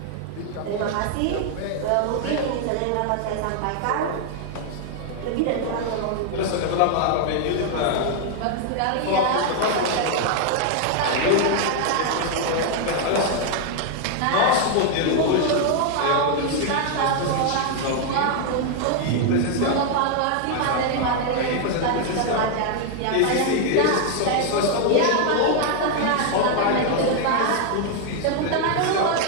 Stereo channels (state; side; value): different; both; correlation 0.00